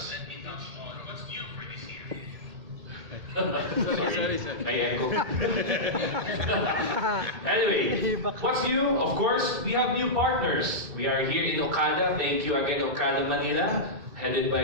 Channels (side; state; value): left; late; 2.7 ms